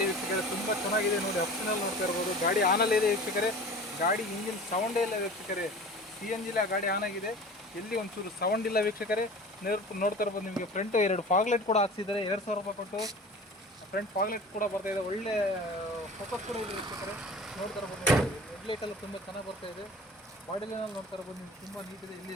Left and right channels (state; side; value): normal; both; correlation 0.39